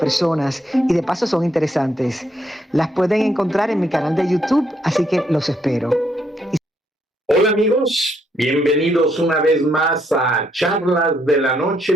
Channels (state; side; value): normal; both; correlation 0.73